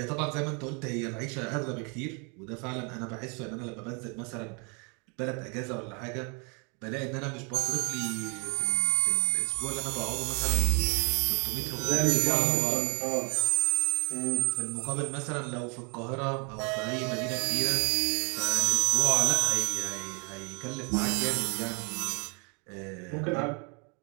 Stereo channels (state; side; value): quieter; left; 34.6 dB